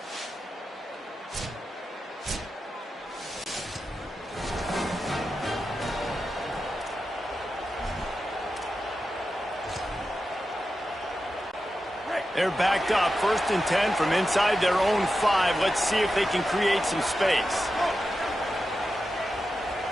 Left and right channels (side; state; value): both; normal; correlation 0.91